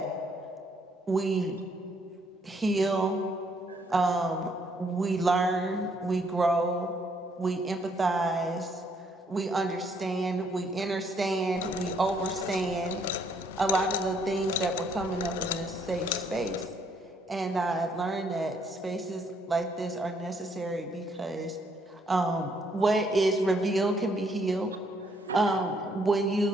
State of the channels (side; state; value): both; normal; correlation 0.69